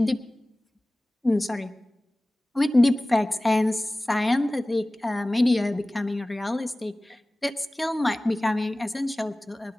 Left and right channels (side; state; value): both; normal; correlation 0.98